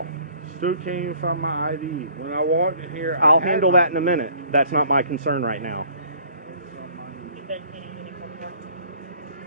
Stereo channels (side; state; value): both; inverted; correlation -0.55